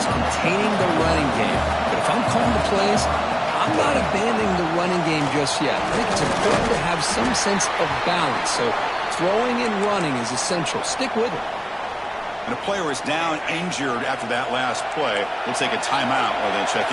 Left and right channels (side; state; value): both; identical; correlation 1.00